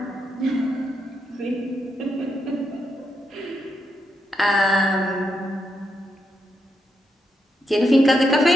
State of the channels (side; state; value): both; normal; correlation 0.81